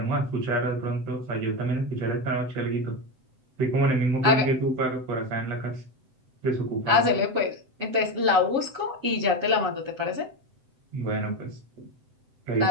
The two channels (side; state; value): left; late; 7.8 ms